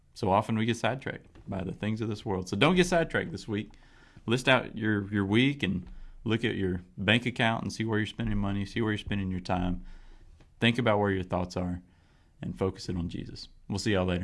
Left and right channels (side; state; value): both; identical; correlation 1.00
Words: so often we get sidetracked by the things of this world. So don't get sidetracked this week. List out your week and look at your bank account and see where you're spending money, see where you're spending your time. Think about where your thoughts are and focus it on Jesus. We'll see y'all